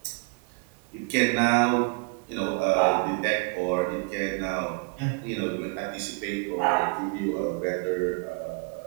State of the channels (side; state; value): left; quieter; 34.0 dB